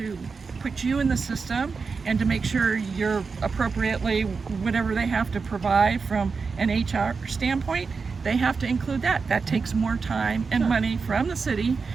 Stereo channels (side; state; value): left; quieter; 4.9 dB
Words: put you in the system and to make sure you're appropriately, whatever they have to provide from an HR standpoint, they have to include that. That takes more time and money from the city